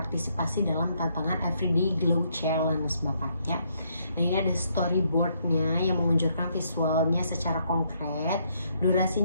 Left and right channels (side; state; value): both; inverted; correlation -0.73